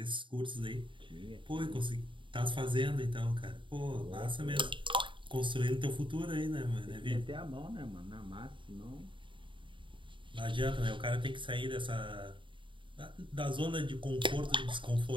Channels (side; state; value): left; late; 0.24 ms